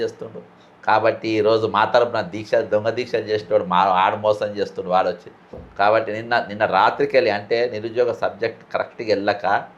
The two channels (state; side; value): identical; both; correlation 1.00